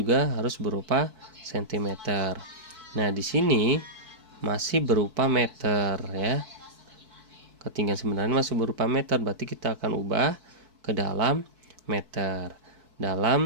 harus berupa cm. Nah, di sini masih berupa meter ya. Ketinggian sebenarnya masih berupa meter, berarti kita akan ubah ke dalam meter.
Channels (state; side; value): late; left; 4.6 ms